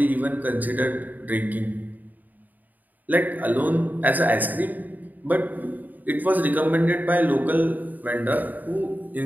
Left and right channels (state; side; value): late; left; 0.084 ms